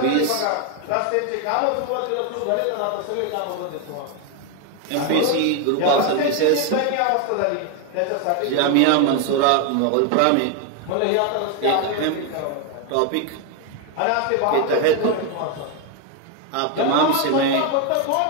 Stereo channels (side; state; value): both; different; correlation 0.01